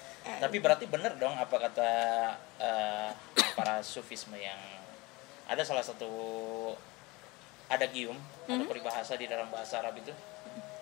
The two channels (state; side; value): quieter; right; 23.5 dB